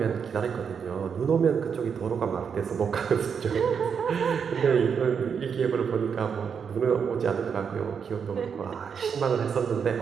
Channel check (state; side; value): quieter; left; 6.7 dB